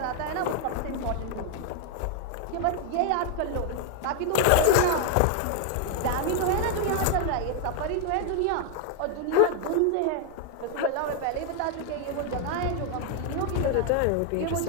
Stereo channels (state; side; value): different; both; correlation 0.00